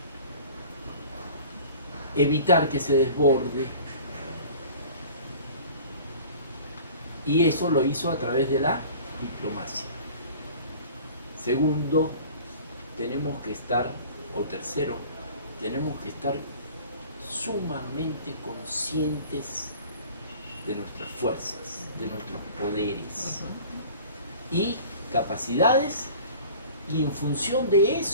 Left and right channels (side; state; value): both; inverted; correlation -0.44